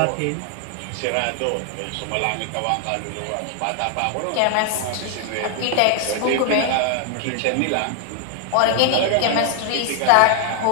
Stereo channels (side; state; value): both; different; correlation 0.00